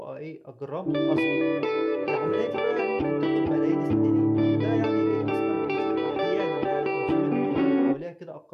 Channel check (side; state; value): both; identical; correlation 1.00